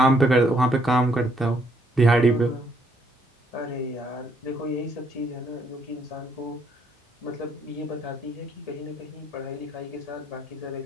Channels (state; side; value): normal; both; correlation 0.70